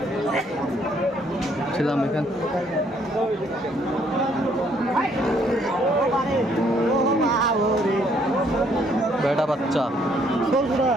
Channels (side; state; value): both; normal; correlation 0.67